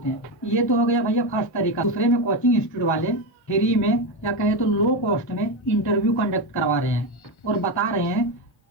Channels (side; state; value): right; late; 1.4 ms